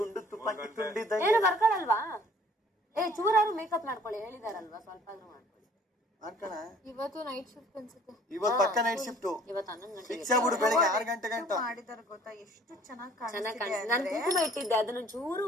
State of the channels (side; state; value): both; normal; correlation 0.55